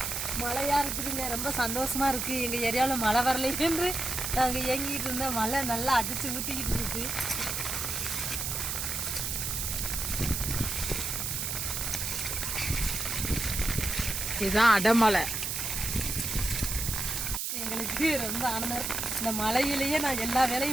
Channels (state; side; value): noise; right; hiss, 2 dB below the sound